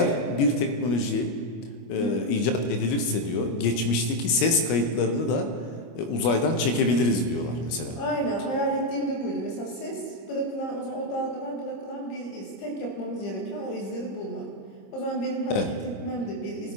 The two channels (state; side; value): late; right; 25 ms